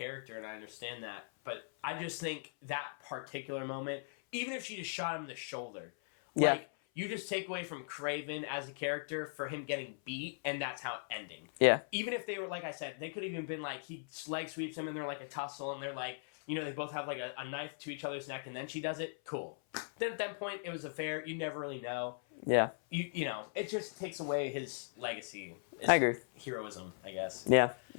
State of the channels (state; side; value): silent; right; 52 dB below the other